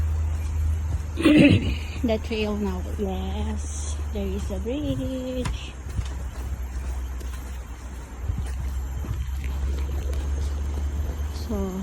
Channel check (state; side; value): identical; both; correlation 1.00